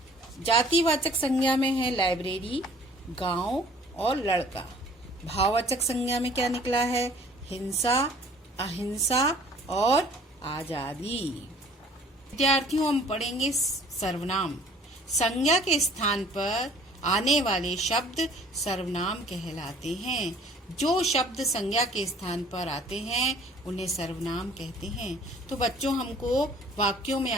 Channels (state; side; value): normal; both; correlation 0.53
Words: जातिवाचक संज्ञा में है लाइब्रेरी, गांव और लड़का। भाववाचक संज्ञा में क्या निकला है? हिंसा, अहिंसा और आजादी। विद्यार्थियों, हम पढ़ेंगे सर्वनाम। संज्ञा के स्थान पर आने वाले शब्द सर्वनाम कहलाते हैं। जो शब्द संज्ञा के स्थान पर आते हैं उन्हें सर्वनाम कहते हैं। तो बच्चों, हमको वाक्यों में